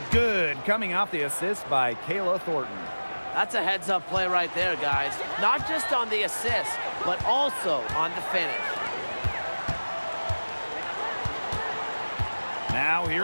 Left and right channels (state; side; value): inverted; both; correlation -1.00